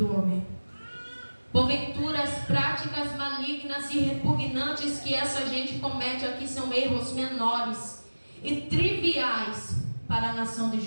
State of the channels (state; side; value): inverted; both; correlation -1.00